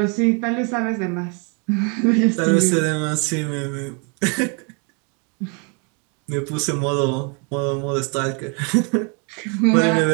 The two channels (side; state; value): left; quieter; 34.1 dB